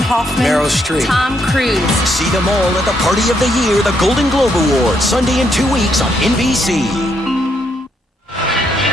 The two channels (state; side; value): normal; both; correlation 0.75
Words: Hoffman, Meryl Streep, Tom Cruise. See them all at the Party of the Year, the Golden Globe Awards, Sunday in 2 weeks on NBC.